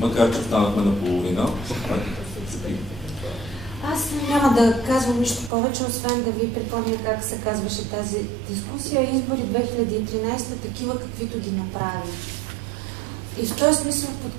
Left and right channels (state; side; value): drops out; left; at 5.5 s